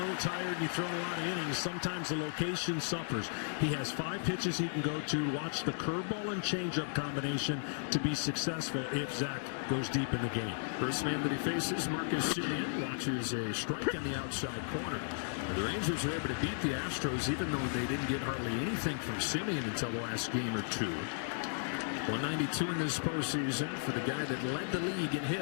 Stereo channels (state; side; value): silent; right; digital silence